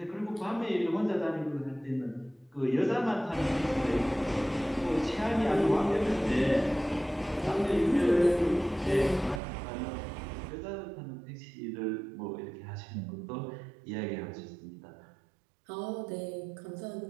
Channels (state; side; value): drops out; left; at 9.4 s